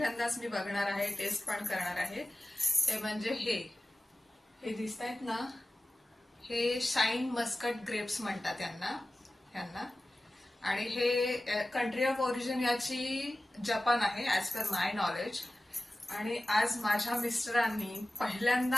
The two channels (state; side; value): normal; both; correlation 0.96